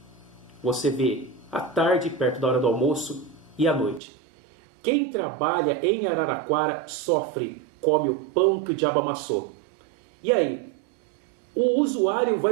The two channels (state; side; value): drops out; left; at 4.0 s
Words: você vê à tarde, perto da hora do almoço, e à noite. Quem trabalha em Araraquara sofre, come o pão que o diabo amassou. E aí? O usuário